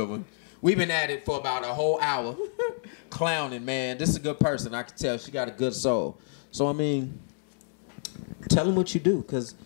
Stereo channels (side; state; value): right; silent; 59 dB below the other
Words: one. We've been at it for about a whole hour. Clowning, man. This is a good person. I can tell she got a good soul. So, I mean, tell them what you do, because